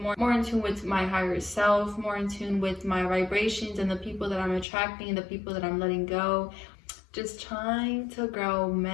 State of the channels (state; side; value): drops out; right; at 4.7 s